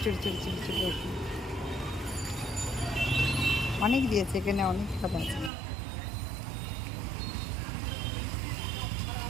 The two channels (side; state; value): left; drops out; at 5.5 s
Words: ছোটো ছোটো ছোটো ছোটো ওষুধ অনেক দিয়েছে, এখানে অনেক কথা আছে।